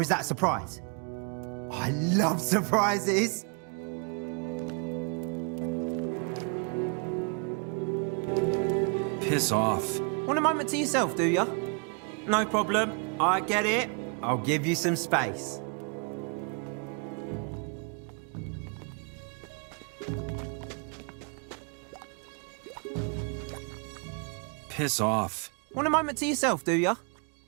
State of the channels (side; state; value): left; quieter; 38.2 dB